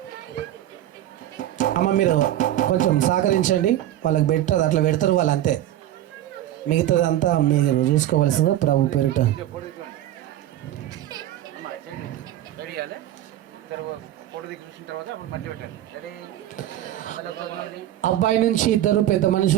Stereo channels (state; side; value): quieter; left; 12.9 dB